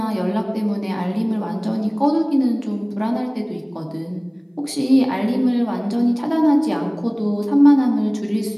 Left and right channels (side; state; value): both; identical; correlation 1.00